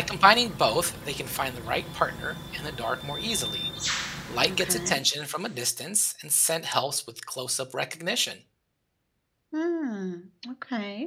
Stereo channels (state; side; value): identical; both; correlation 1.00